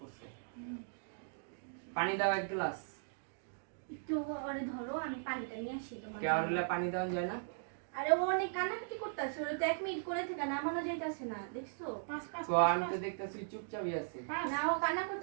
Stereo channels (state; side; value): silent; left; digital silence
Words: পানি দাও এক গ্লাস একটু আরে ধরো আমি পানিটা নিয়ে আসি তোমার কেওড়া পানি দাও যায় না আরে ও অনেক কান্নাকাটি করতেছে ওরে তো 1 মিনিট করে থেকে নামানো যাইতাছে না দেখছো পাস পাস তো আমি তো দেখতেছি চুপচাপই আছে না ও কান্না